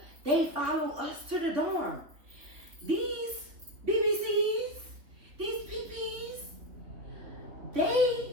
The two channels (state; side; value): late; left; 3.4 ms